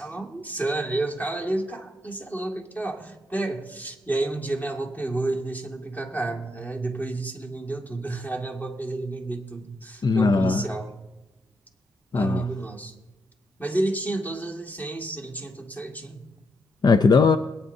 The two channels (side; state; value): both; normal; correlation 0.79